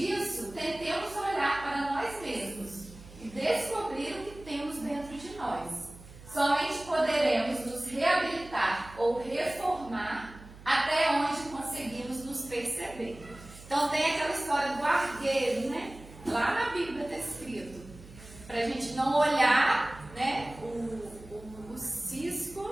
Somente poderemos nos reabilitar ou reformar até onde conseguimos nos perceber. Então tem aquela história do argueiro, né? Lá na Bíblia está escrito, para a gente não olhar, né, o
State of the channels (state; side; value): noise; right; hum, 18 dB below the sound